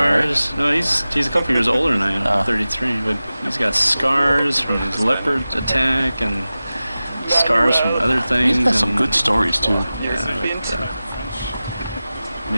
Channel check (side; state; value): both; inverted; correlation -0.96